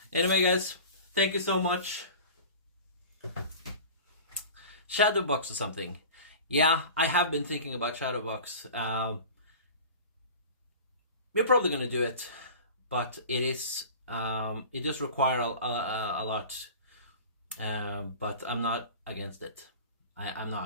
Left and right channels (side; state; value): both; inverted; correlation -0.38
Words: Anyway, guys, thank you so much. Shadowbox or something. Yeah, I have been thinking about Shadowbox. We're probably gonna do it, but it does require a lot. But I'm not against it. I'm